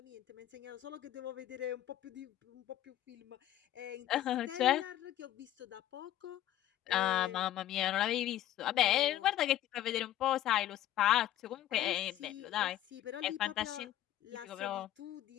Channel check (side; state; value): right; quieter; 12.9 dB